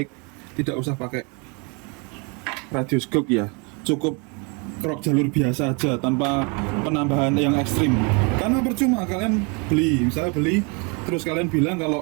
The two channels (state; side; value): quieter; left; 32.4 dB